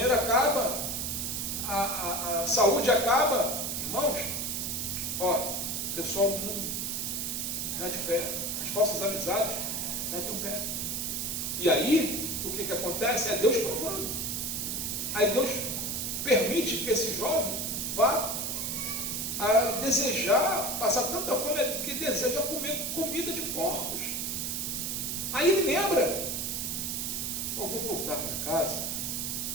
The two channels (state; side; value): noise; right; hiss, 2 dB below the sound